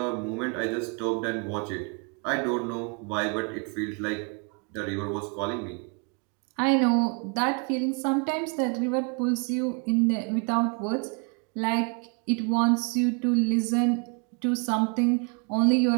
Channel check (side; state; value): left; quieter; 35.8 dB